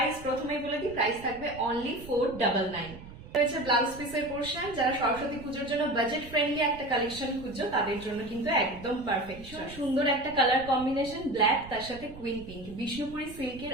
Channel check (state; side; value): noise; right; rumble, 16 dB below the sound